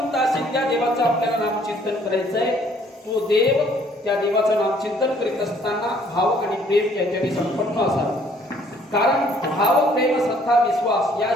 असेल त्या देवाचं आपल्याला नामचिंतन करायचं आहे. तो देव त्या देवाचं नामचिंतन करीत असताना भाव आणि प्रेम याच्याने संपन्न असावे. कारण भाव प्रेम श्रद्धा विश्वास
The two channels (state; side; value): normal; both; correlation 0.61